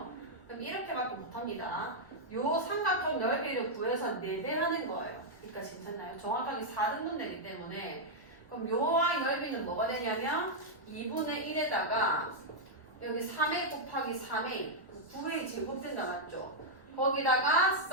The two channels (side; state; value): both; normal; correlation -0.04